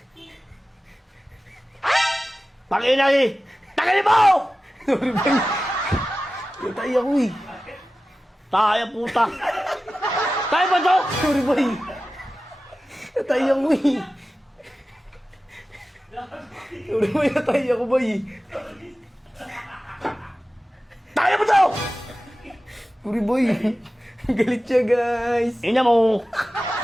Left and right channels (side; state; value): both; normal; correlation 0.95